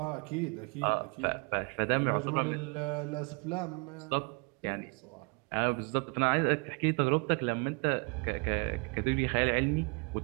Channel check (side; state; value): left; quieter; 33.5 dB